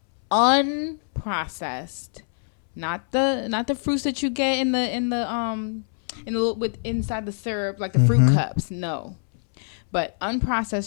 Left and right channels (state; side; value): silent; right; 63 dB below the other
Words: unprocessed, not the fruits that you get in the with inside the syrup like the fruit cups. No, but